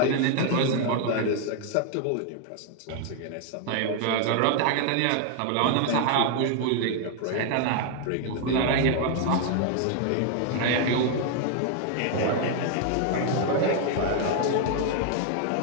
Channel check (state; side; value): different; both; correlation 0.00